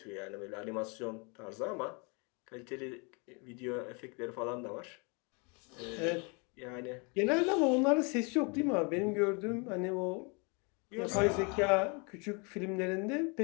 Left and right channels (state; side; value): quieter; right; 32.4 dB